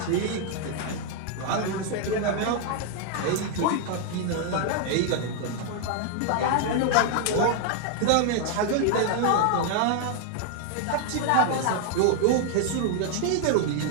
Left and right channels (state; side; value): different; both; correlation 0.00